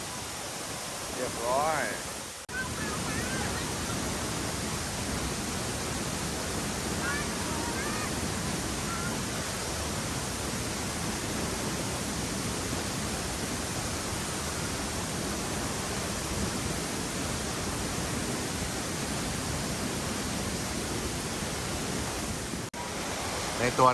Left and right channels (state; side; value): identical; both; correlation 1.00